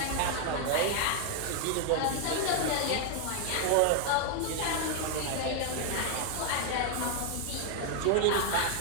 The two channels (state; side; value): different; both; correlation 0.00